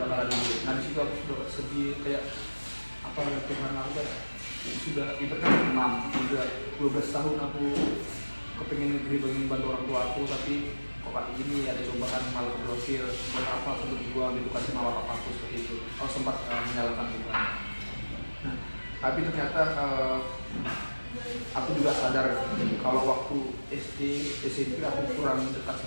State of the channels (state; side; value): inverted; both; correlation -1.00